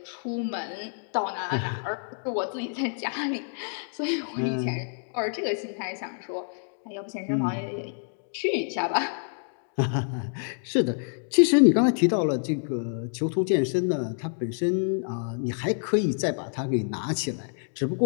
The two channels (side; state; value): right; silent; 60 dB below the other